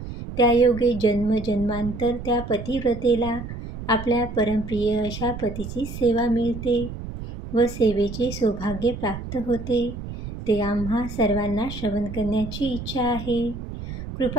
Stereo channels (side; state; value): right; noise; rumble, 9 dB below the sound